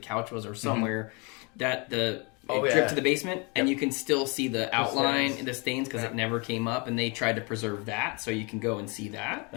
was or somewhere, that it dripped to the basement, and you can still see the outline and the stains because it never came up, and they tried to preserve that, so you can go and see that.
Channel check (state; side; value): quieter; right; 30.6 dB